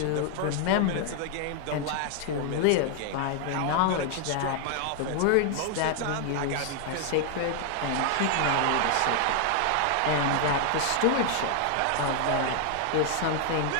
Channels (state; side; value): different; both; correlation 0.00